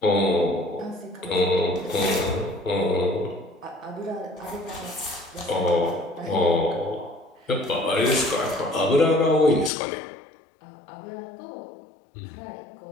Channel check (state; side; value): drops out; right; at 9.7 s